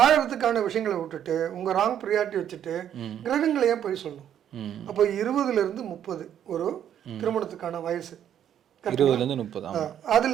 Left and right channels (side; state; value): left; quieter; 9.9 dB